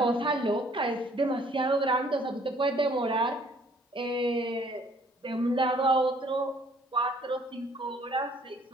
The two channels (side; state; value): both; normal; correlation 0.60